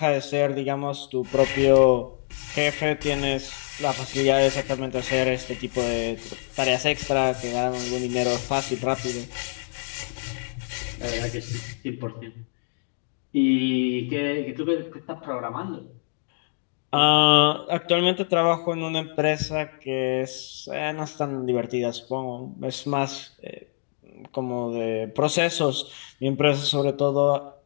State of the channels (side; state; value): right; silent; digital silence